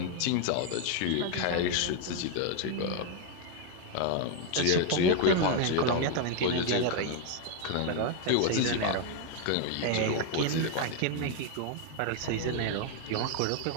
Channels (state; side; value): different; both; correlation 0.00